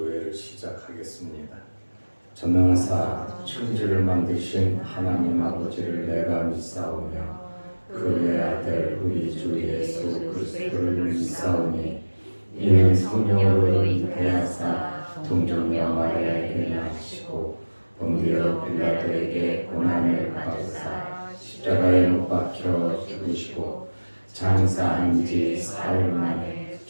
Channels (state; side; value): inverted; both; correlation -1.00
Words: 시작하겠습니다. 전능하사 천지를 만드신 하나님 아버지를 내가 믿사오며 그의 아들 우리 주 예수 그리스도를 믿사오니 이는 성령으로 잉태하사 동정녀 마리아에게 나시고 본디오 빌라도에게 고난을 받으사 십자가에 못 박혀 죽으시고 장사한 지 사흘 만에